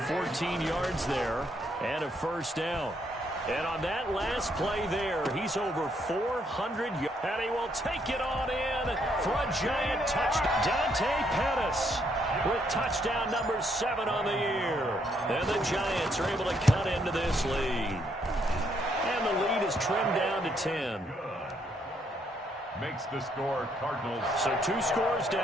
yards there, and a 1st down. And on that last play there, he's over 400 yards. And he will take it on in for a giant touchdown. Dante Pettis with touchdown number 7 on the year. And the Giants are able to cut into this lead. And the lead is trimmed down to 10. Makes the score Cardinals. So 2 scores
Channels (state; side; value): normal; both; correlation 0.73